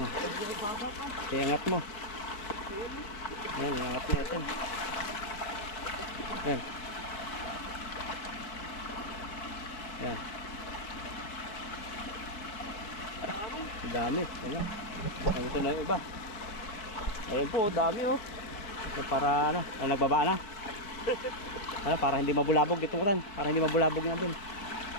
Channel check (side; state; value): right; late; 4.7 ms